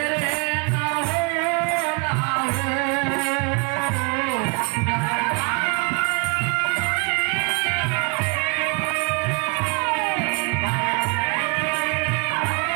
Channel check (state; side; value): quieter; left; 33.9 dB